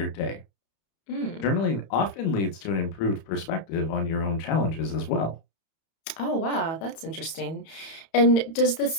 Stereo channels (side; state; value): right; late; 31 ms